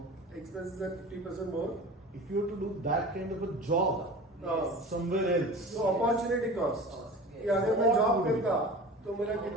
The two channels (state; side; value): normal; both; correlation 0.37